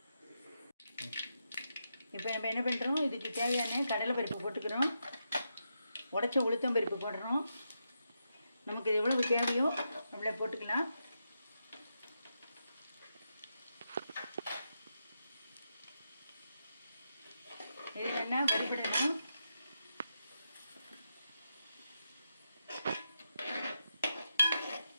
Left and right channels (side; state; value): both; inverted; correlation -0.85